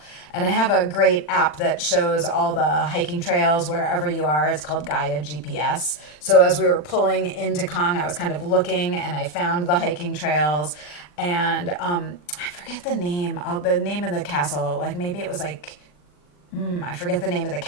And I have a great app that shows all the hiking trails wherever you are. It's called Gaia GPS. So as we were pulling into Cong, I was kind of looking and I found the hiking trails. And I forget the name of the castle. Like maybe it was like, I forget the name of the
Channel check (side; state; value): right; late; 40 ms